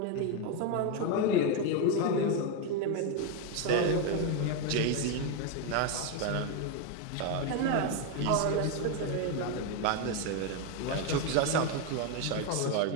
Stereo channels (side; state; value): both; different; correlation 0.02